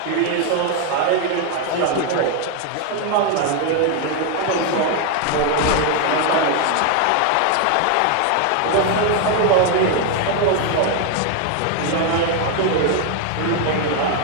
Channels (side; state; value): both; different; correlation 0.01